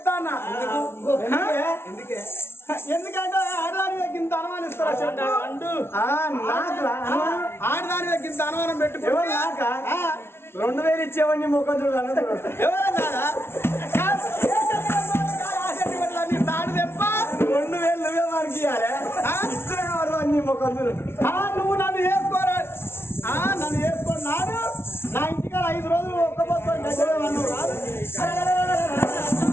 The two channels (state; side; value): late; right; 0.12 ms